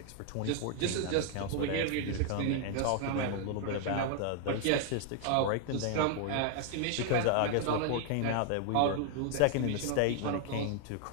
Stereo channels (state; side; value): different; both; correlation 0.00